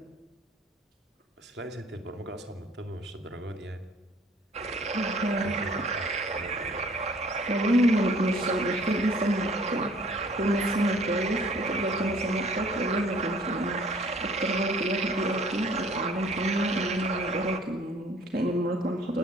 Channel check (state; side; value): normal; both; correlation 0.55